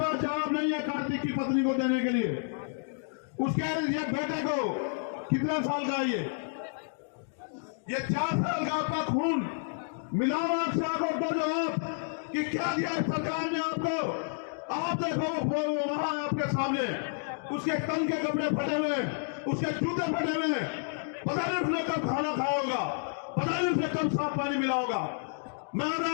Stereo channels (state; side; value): silent; right; digital silence